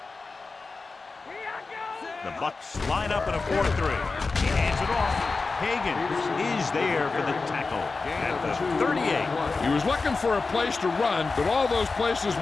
The Bucs line up in a 4-3. He hands it off. Hagan is there for the tackle at the 38. He was looking for a place to run, but all those places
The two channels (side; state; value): right; quieter; 4.0 dB